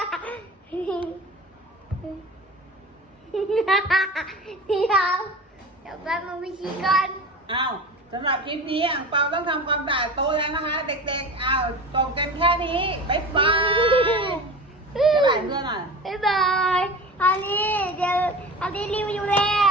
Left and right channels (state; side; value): normal; both; correlation 0.33